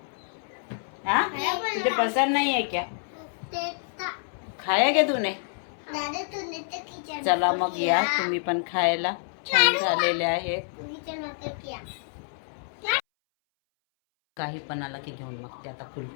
हाँ तुझे पसंद नहीं है क्या? खाया क्या तूने? चला मग या तुम्ही पण खायला. छान झालेले आहे. काही पण आला की घेऊन मग ते आता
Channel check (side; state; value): right; silent; 60 dB below the other